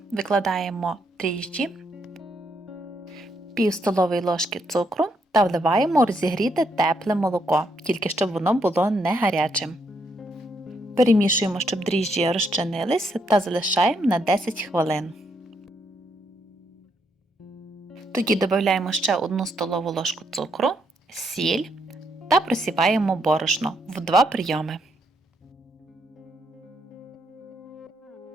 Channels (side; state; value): both; normal; correlation 0.76